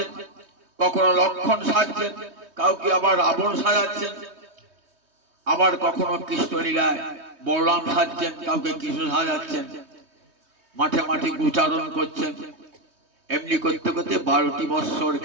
কখনো লক্ষণ সাজছেন, কাউকে আবার রাবণ সাজাচ্ছেন, আবার কখনো কৃষ্ণলীলায় বলরাম সাজছেন, কাউকে কৃষ্ণ সাজাচ্ছেন, মাঠে মাঠে উচ্চারণ করছেন। এমনি করতে করতে 12টি বৎসর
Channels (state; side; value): late; left; 3.2 ms